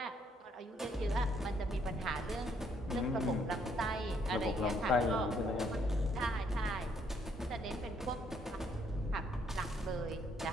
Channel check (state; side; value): normal; both; correlation 0.69